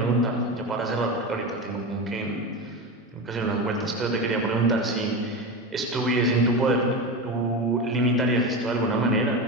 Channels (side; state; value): both; normal; correlation 0.21